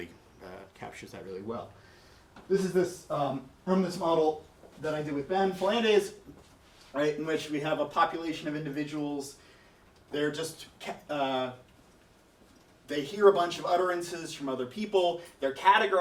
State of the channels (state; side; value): identical; both; correlation 1.00